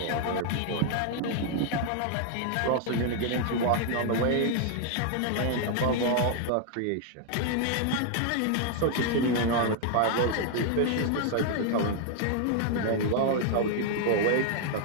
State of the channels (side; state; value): both; different; correlation 0.00